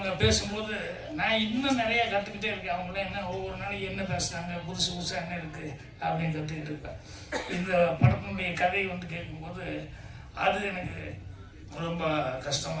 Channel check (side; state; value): both; identical; correlation 1.00